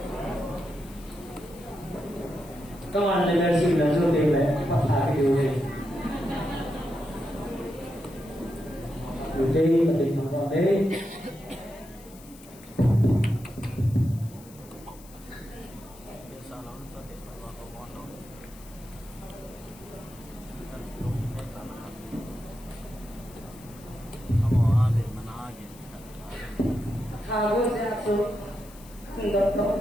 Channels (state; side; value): noise; left; hiss, 22 dB below the sound